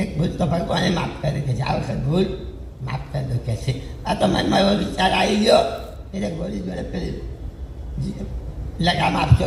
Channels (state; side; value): identical; both; correlation 1.00